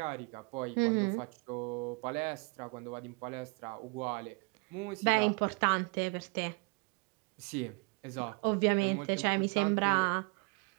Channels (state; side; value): quieter; left; 32.9 dB